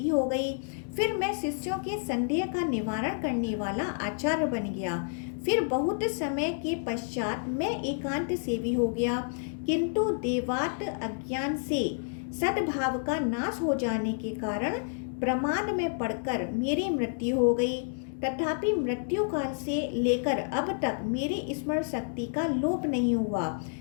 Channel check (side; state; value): right; silent; digital silence